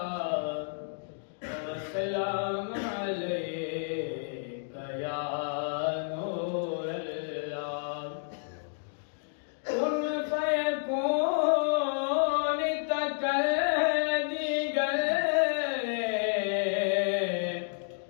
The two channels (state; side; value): silent; right; digital silence